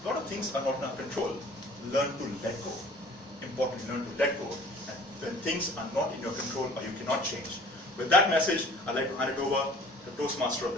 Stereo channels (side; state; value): both; normal; correlation 0.49